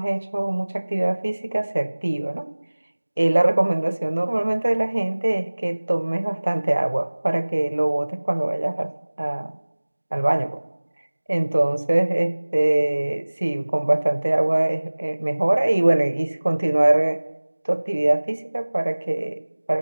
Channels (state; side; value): inverted; both; correlation -1.00